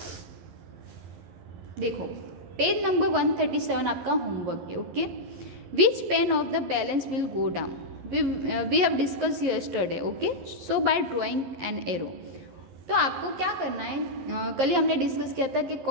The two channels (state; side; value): late; left; 11 ms